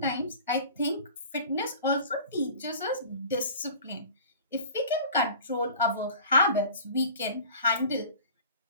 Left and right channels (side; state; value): both; inverted; correlation -0.42